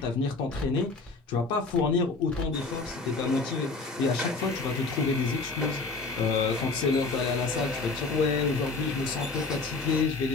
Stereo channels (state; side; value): quieter; right; 3.8 dB